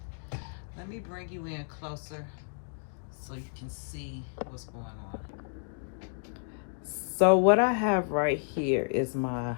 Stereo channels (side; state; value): right; silent; digital silence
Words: Let me bring you in closer so you can see what's going on. So what I have right here is my